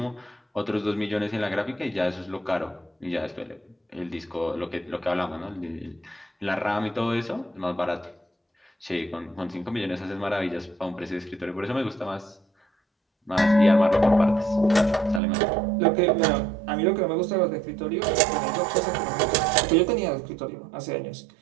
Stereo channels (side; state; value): left; drops out; at 15.2 s